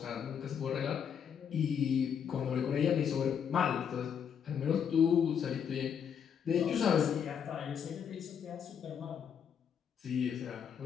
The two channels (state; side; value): quieter; right; 7.8 dB